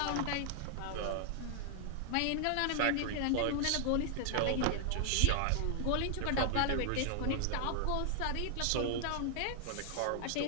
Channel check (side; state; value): both; different; correlation 0.00